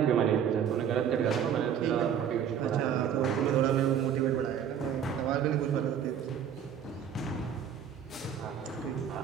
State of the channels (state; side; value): quieter; left; 8.6 dB